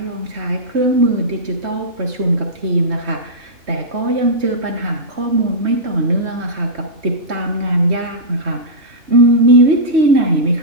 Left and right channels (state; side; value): late; left; 3.2 ms